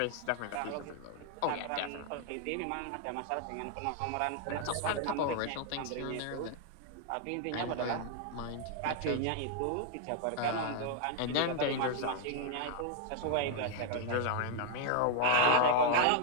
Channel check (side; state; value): both; different; correlation 0.01